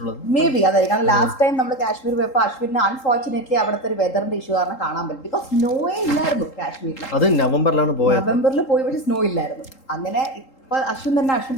മേ ബി അതായിരിക്കും. കാരണം ലാസ്റ്റ് ടൈം നമ്മൾ കാശ്മീർ പോയപ്പോൾ അശ്വിന് അൺഫോർച്ചുനേറ്റ്ലി അവിടുത്തെ ഒരു വെതറിന്റെ ഇഷ്യൂ കാരണം കാണാൻ പറ്റും. ബിക്കോസ് സ്നോയേ ഇല്ലായിരുന്നു കാശ്മീരിൽ. അത് നവംബറിലാണ് പോയത്. നവംബറിൽ പോയി പക്ഷേ സ്നോ ഇല്ലായിരുന്നു. അങ്ങനെ ഇപ്പൊ അശ്വിൻ തന്നെ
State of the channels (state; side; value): late; right; 3.8 ms